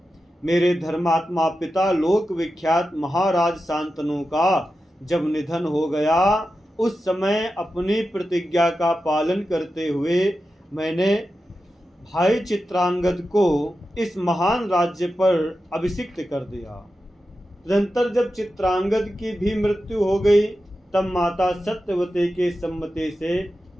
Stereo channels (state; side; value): normal; both; correlation 0.91